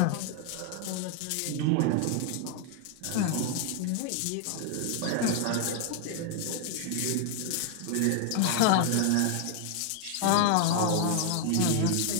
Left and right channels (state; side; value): different; both; correlation 0.00